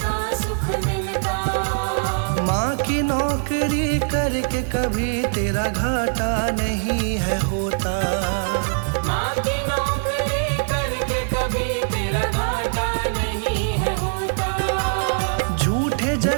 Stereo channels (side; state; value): left; silent; 61 dB below the other